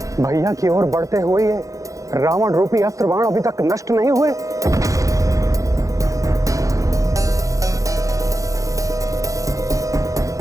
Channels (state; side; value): late; left; 0.16 ms